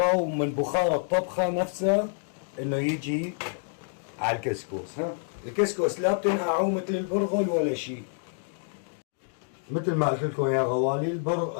ومن بخار الطبخه نفسها انه يجي على الكسكس. ها الكسكس لا بتنقعوا مثل البرغل ولا شيء. مثل ما قلت لكم يا غوالي،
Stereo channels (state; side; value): silent; right; 60 dB below the other